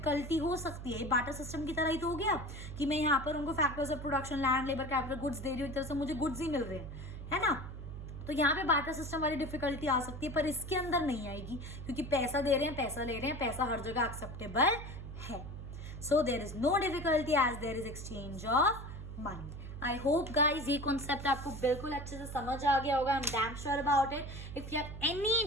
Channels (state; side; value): noise; right; hum, 10 dB below the sound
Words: हो सकती है। बार्टर सिस्टम की तरह ही तो हो गया कि मैं यहाँ पर उनको factors of production, land, labour, capital, goods दे रही हूँ, एक तरह से मुझे गुड्स ही मिल रहे हैं, है ना। तो यहाँ पे बार्टर सिस्टम वाली डिफिकल्टी आ सकती है, पर इसके अंदर नहीं आएगी, क्योंकि पैसा दे रहे हैं, पैसा ले रहे हैं, पैसा हर जगह एक्सेप्टेबल है। So there is no difficulty as there is exchange of money. I hope guys ये कॉन्सेप्ट आपको बिल्कुल अच्छे से समझ आ गया होगा। I am damn sure about it. If you have any